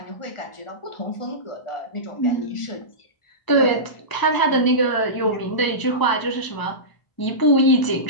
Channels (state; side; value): late; right; 1.0 ms